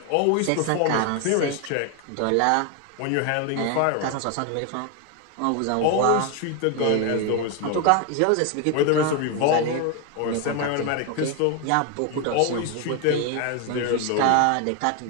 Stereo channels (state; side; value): different; both; correlation 0.01